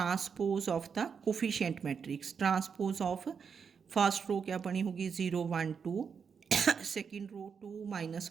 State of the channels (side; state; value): left; quieter; 6.3 dB